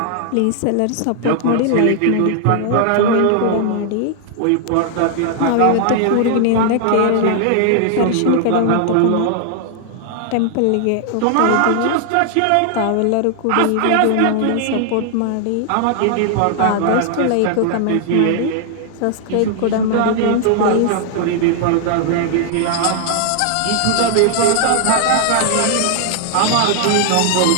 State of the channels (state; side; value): different; both; correlation 0.00